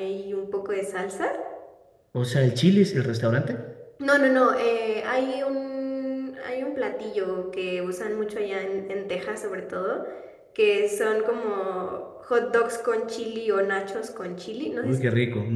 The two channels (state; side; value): identical; both; correlation 1.00